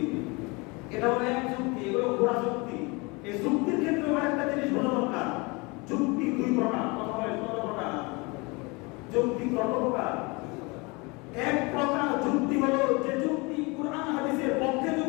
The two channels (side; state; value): right; quieter; 27.2 dB